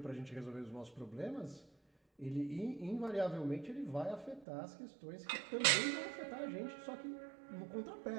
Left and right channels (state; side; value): drops out; left; at 4.5 s